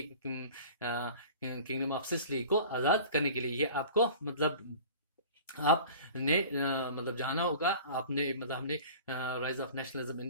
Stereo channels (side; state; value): both; inverted; correlation -0.42